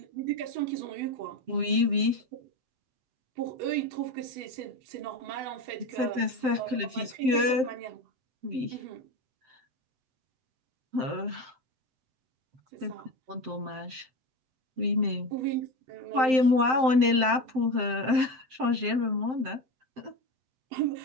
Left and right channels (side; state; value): left; late; 7.7 ms